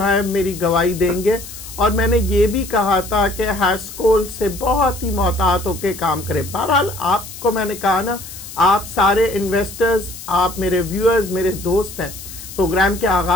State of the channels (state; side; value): noise; left; hiss, 13 dB below the sound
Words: मेरी गवाही देंगे। और मैंने ये भी कहा था कि हैस्कोल से बहुत ही मोहतात होकर काम करें। बहरहाल आपको मैंने कहा ना, आप सारे इन्वेस्टर्स, आप मेरे व्यूअर्स, मेरे दोस्त हैं। प्रोग्राम के